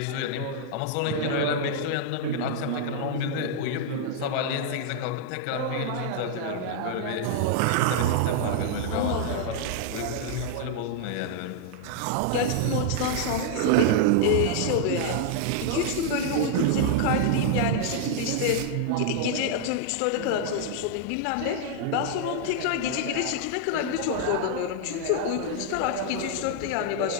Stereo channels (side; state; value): both; different; correlation -0.01